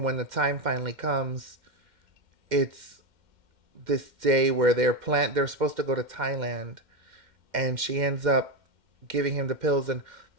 when the time finally comes, it's this day where they're supposed to go to Thailand, and she ends up giving him the pills. And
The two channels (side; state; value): left; late; 2.1 ms